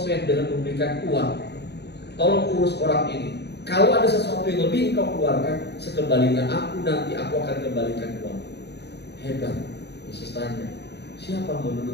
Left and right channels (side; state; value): right; late; 0.48 ms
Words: dengan memberikan uang. Tolong urus orang ini. Kalau ada sesuatu yang lebih engkau keluarkan, sekembalinya aku nanti aku akan kembalikan uang. Hebat. Yesus tanya, siapa